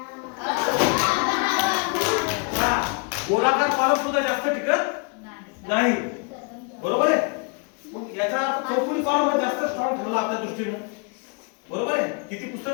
गोलाकार कॉलम सुद्धा जास्त टिकत नाही. बरोबर आहे. मग याचा अर्थ चौकोनी कॉलम हा जास्त स्ट्रॉंग ठरला आपल्या दृष्टीने. बरोबर आहे. किती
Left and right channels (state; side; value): quieter; right; 34.8 dB